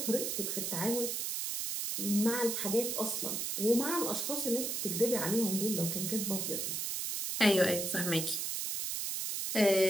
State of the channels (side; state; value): right; noise; hiss, 2 dB below the sound